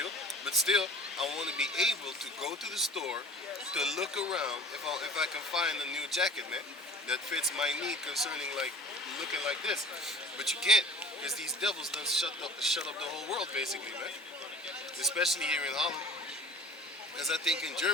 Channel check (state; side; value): normal; both; correlation 0.44